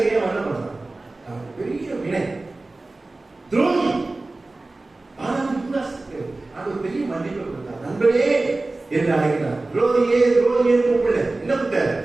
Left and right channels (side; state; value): left; quieter; 3.1 dB